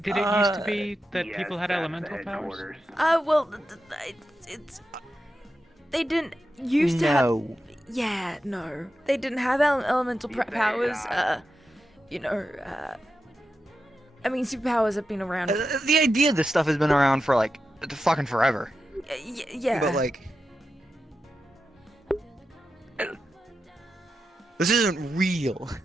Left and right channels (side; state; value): both; normal; correlation 0.89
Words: Did it used to be that people had elemental powers? Well, it's they didn't used to have. Yeah, no, they didn't have elemental powers. You know, I mean, superpowers have been around. The idea of this stuff has been around for like fucking forever. Yeah. But like, this isn't real.